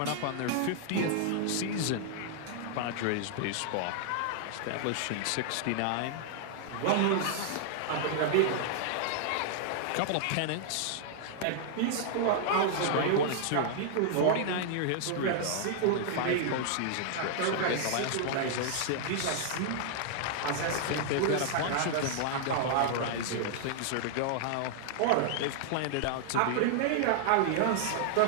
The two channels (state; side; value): different; both; correlation -0.01